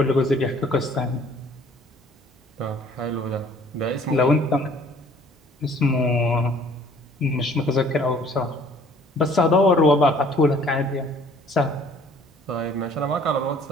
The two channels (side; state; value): both; normal; correlation 0.55